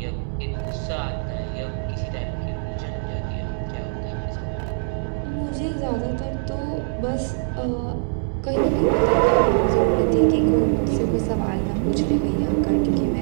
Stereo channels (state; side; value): silent; left; digital silence